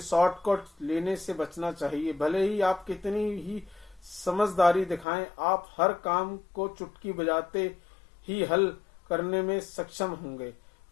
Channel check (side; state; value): right; drops out; at 5.1 s